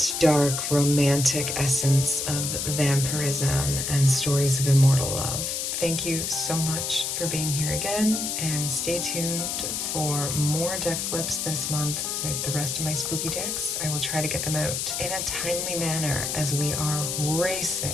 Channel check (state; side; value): noise; left; hiss, 2 dB below the sound